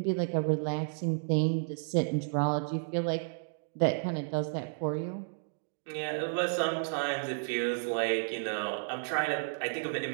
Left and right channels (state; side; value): silent; left; digital silence